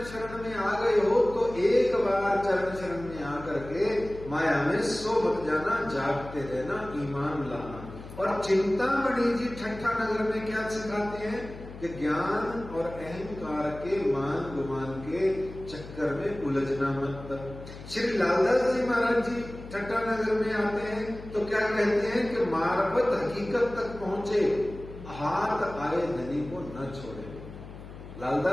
शरण में आ गए हो तो एक बार चरण शरण में आकर के माया में सो मत जाना, जागते रहना, ईमान लाना। और चिंतामणि जी ठट्ठा नगर में क्या सिखाते हैं कि ज्ञान और अहंकार के मान गुमान के चक्कर में उलझना मत। श्री लालदास जी महाराज जी ठट्ठा नगर में आते हैं तो क्या कहते हैं कि मार्फत हकीकत तक पहुंचे, हाथ आए धनी को न छोड़े।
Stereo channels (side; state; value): left; noise; hum, 14 dB below the sound